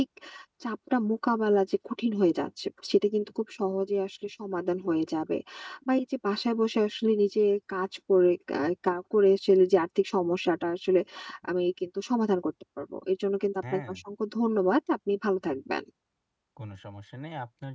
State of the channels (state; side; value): identical; both; correlation 1.00